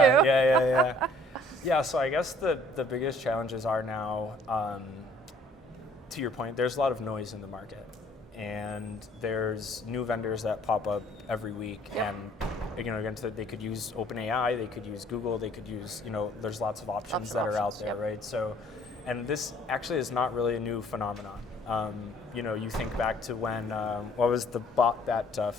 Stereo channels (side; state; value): both; normal; correlation 0.58